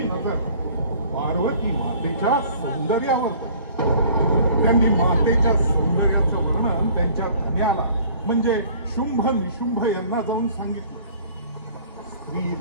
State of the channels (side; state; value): both; inverted; correlation -0.52